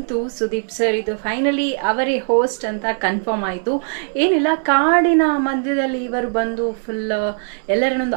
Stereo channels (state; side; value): silent; left; 63 dB below the other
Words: ಸುದೀಪ್ ಸರ್ ಇದು ಫೈನಲಿ ಅವರೇ ಹೋಸ್ಟ್ ಅಂತ ಕನ್ಫರ್ಮ್ ಆಯಿತು. ಏನಿಲ್ಲ, ಕಾಡಿನ ಮಧ್ಯದಲ್ಲಿ ಇವರು ಬಂದು ಫುಲ್